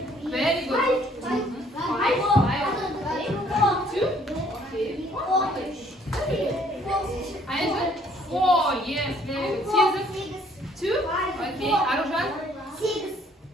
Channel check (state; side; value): normal; both; correlation 0.62